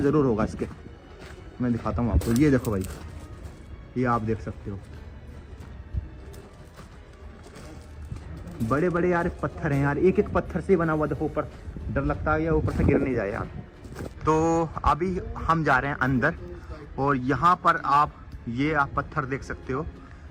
जरूर होगा इसके। मैं दिखाता हूँ आपको, ये देखो भाई, ये आप देख सकते हो। बड़े बड़े यार पत्थर हैं यार, एक एक पत्थर से बना हुआ। देखो ऊपर, डर लगता है या ऊपर से गिर नहीं जाए यार। तो अभी हम जा रहे हैं अंदर, और यहाँ पर आप ये आप पत्थर देख सकते हो,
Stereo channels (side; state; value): both; identical; correlation 1.00